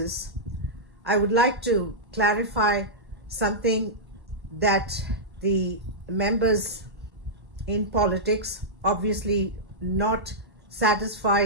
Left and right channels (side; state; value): left; late; 1.1 ms